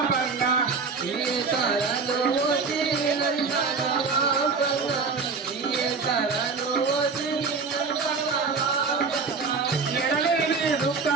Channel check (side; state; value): left; quieter; 4.8 dB